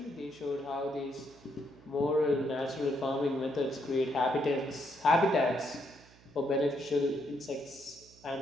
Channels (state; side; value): noise; right; hum, 25 dB below the sound